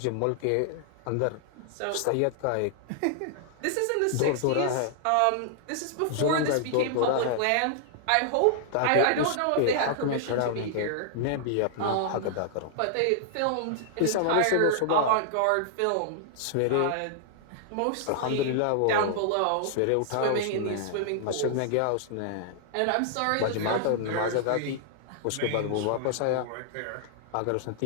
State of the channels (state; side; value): different; both; correlation -0.01